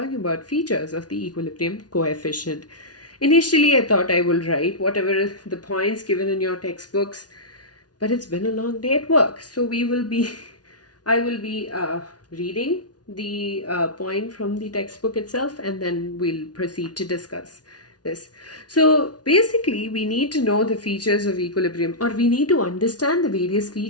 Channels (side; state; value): right; late; 0.69 ms